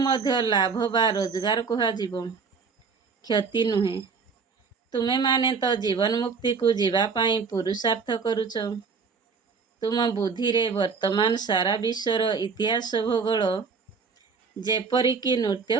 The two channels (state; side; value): quieter; left; 5.3 dB